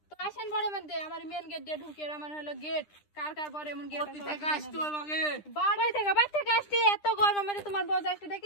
তো আসেন বড় মধ্যে, আমার মেন গেট দিয়ে ঢুকে, আমার হলো গেট। কার বড় এমন গেট কোথা থেকে আসছো আমাকে? বাড়ি থেকে আসছি। এত গরমের মধ্যে তোমার বউ আসতে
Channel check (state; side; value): late; right; 9.9 ms